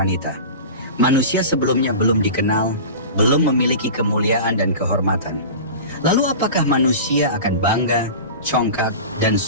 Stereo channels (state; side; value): inverted; both; correlation -0.33